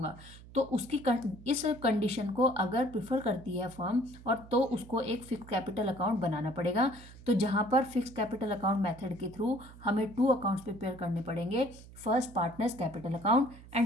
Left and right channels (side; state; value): right; noise; hum, 19 dB below the sound